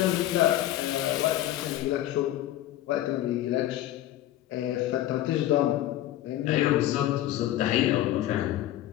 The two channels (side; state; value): right; quieter; 13.7 dB